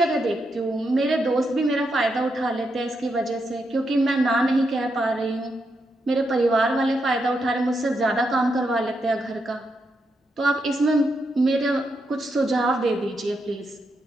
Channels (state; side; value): normal; both; correlation 0.82